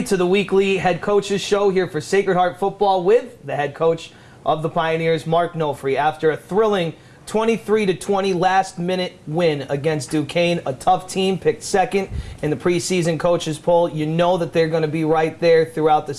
to the weekly Head Coaches Show here for Sacred Heart Football with the head coach of the Pioneers, Mark Nofri. After a thrilling 23-20 last-minute win against Duquesne, a tough team, picked second in the preseason coaches poll. You know that they're going to be right there throughout the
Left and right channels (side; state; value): both; identical; correlation 1.00